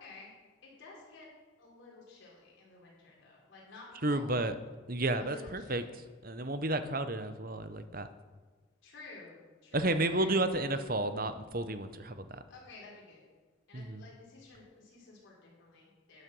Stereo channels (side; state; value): both; normal; correlation 0.22